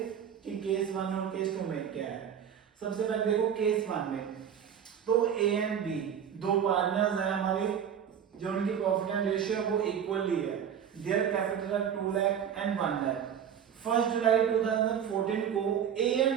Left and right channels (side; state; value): left; quieter; 8.4 dB